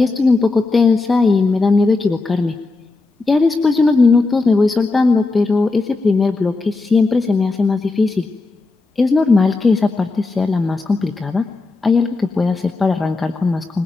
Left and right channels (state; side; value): quieter; right; 3.6 dB